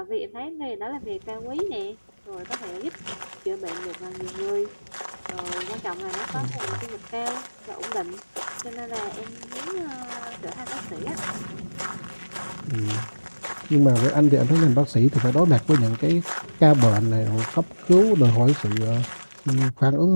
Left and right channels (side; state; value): both; inverted; correlation -1.00